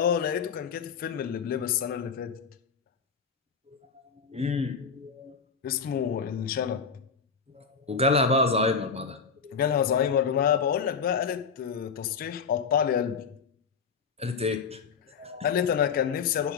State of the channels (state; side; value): quieter; right; 5.9 dB